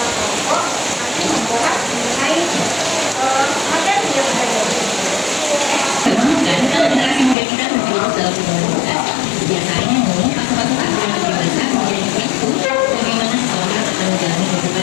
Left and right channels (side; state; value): right; drops out; at 7.4 s